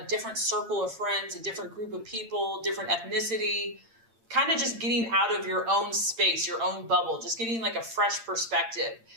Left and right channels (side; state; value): left; late; 8.8 ms